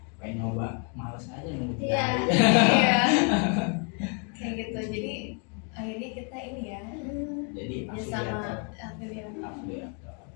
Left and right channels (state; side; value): quieter; right; 37.9 dB